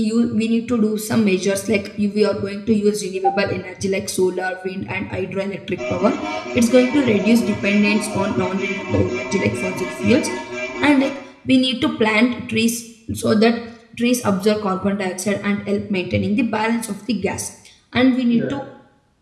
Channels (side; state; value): both; identical; correlation 1.00